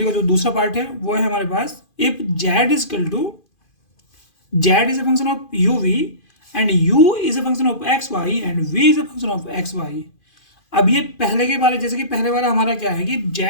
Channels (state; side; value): late; right; 2.5 ms